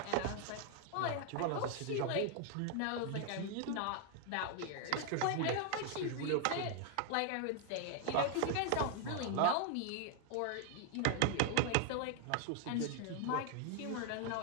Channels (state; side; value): different; both; correlation 0.00